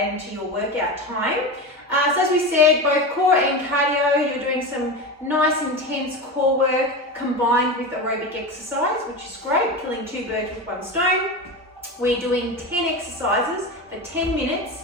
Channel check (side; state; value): both; normal; correlation 0.23